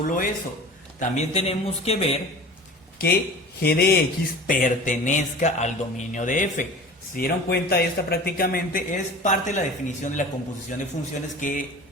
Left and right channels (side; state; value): both; normal; correlation 0.39